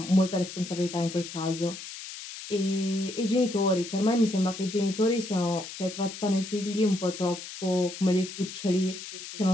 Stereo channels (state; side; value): noise; left; hiss, 11 dB below the sound